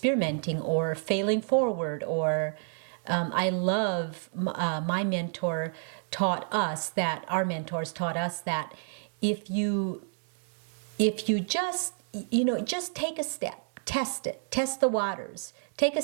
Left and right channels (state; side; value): silent; left; 58 dB below the other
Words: or failing forward or I love my mentor taught us that our mentors taught us that if you just just take a step, test it, test the waters, take a